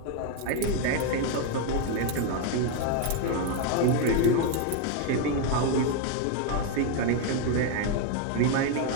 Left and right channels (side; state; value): both; different; correlation 0.01